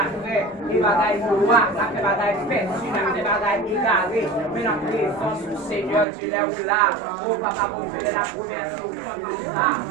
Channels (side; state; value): left; drops out; at 6.1 s